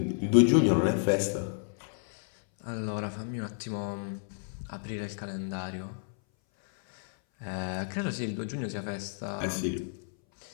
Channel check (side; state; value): right; silent; 57 dB below the other